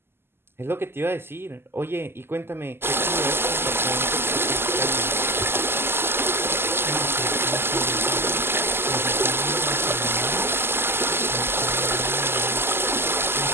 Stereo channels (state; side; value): late; left; 0.12 ms